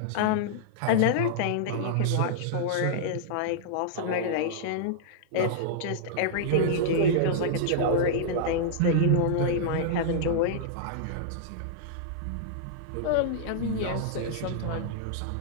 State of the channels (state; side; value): different; both; correlation -0.02